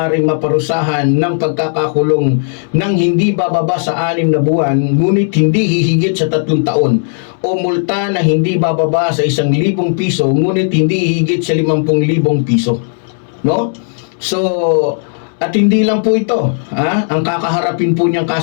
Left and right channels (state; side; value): silent; right; digital silence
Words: maparusahan ng pagkakakulong ng hindi bababa sa 6 na buwan, ngunit hindi hihigit sa 3 taon, o multa na hindi bababa sa 1,000 piso, ngunit hindi hihigit sa 50,000 piso. No? So, at hindi lang po ito, ang kakaharapin po niyang